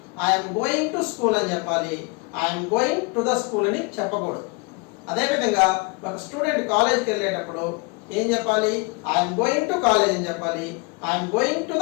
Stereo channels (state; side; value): quieter; right; 30.0 dB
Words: ఐఎమ్ గోయింగ్ టు స్కూల్ అని చెప్పాలి, I'm going to the school అని చెప్పకూడదు. అదేవిధంగా ఒక స్టూడెంట్ కాలేజ్కి వెళ్ళేటప్పుడు ఏం చెప్పాలి? ఐఎమ్ గోయింగ్ టు కాలేజ్ అని చెప్పాలి, I'm going to